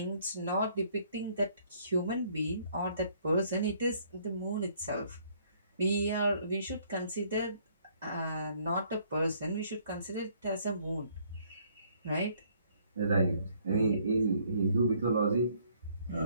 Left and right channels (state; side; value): inverted; both; correlation -0.64